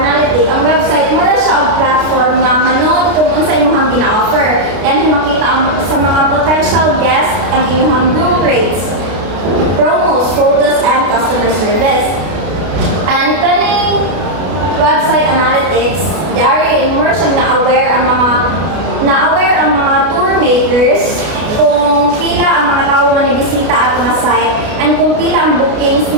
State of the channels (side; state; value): left; late; 32 ms